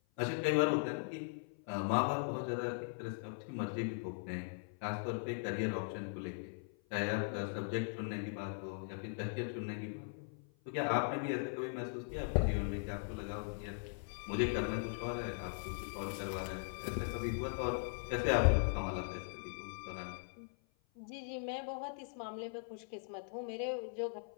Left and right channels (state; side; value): silent; right; 51 dB below the other